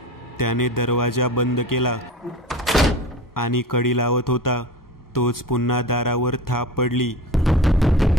त्याने दरवाजा बंद केला आणि कडी लावत होता तोच पुन्हा दारावर थाप पडली.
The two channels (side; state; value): both; normal; correlation 0.33